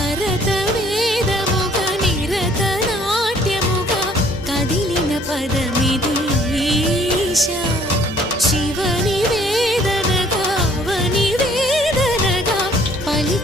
భరత వేదముగా నిరత నాట్యముగా కదిలిన పదమిది ఈశా శివని వేదనగా అవని వేదనగా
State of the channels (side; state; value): both; normal; correlation 0.59